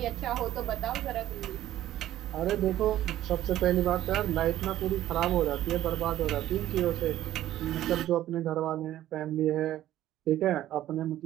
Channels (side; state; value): left; quieter; 13.2 dB